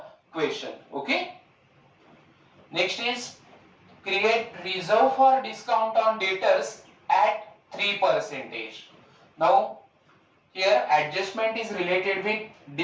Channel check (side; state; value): both; identical; correlation 1.00